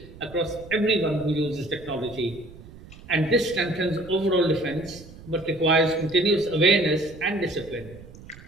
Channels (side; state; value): right; noise; rumble, 19 dB below the sound